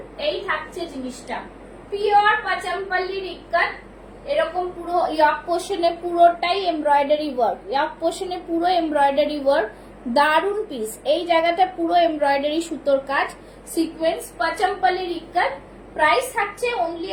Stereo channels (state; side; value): identical; both; correlation 1.00